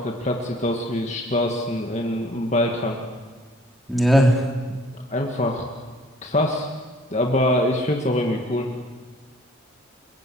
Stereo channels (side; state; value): both; normal; correlation 0.55